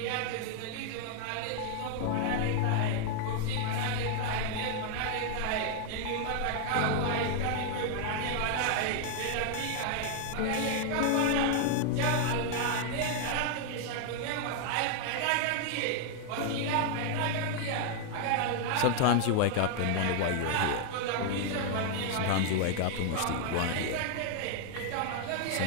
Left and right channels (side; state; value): both; different; correlation 0.00